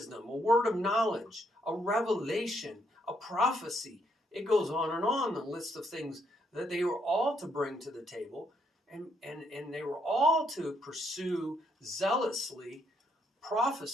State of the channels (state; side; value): normal; both; correlation 0.73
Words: a word of knowledge, a revelation, a prophecy. It goes on, the list of things that they were all to bring to the table, and they were all to pursue zealously